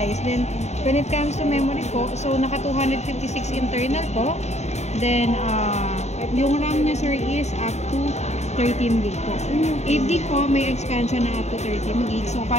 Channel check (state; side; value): late; right; 0.32 ms